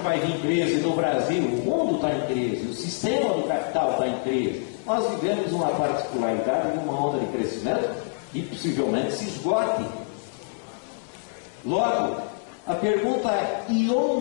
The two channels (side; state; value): right; silent; digital silence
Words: vai vir crise no Brasil. O mundo está em crise, o sistema do capital está em crise. Nós vivemos uma particularidade de uma onda de crescimento que possivelmente se esgote. Logo, a pergunta é: e